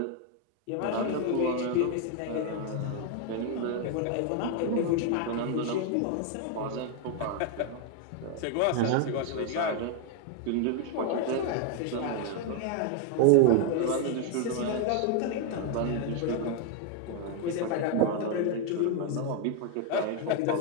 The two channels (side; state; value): both; different; correlation 0.01